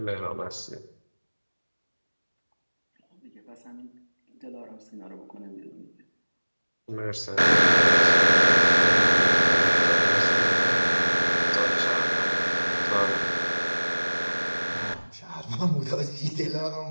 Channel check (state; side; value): inverted; both; correlation -1.00